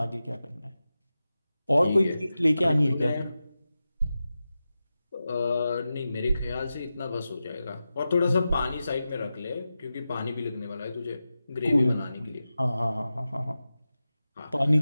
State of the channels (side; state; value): both; inverted; correlation -0.93